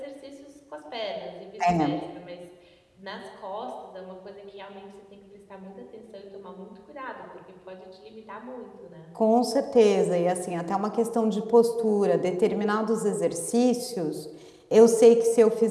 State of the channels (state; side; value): identical; both; correlation 1.00